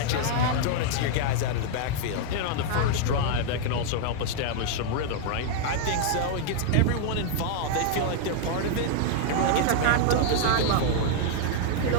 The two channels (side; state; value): both; different; correlation -0.01